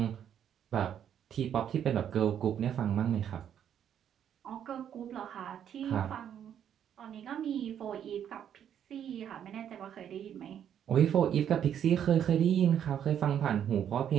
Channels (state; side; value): quieter; left; 9.4 dB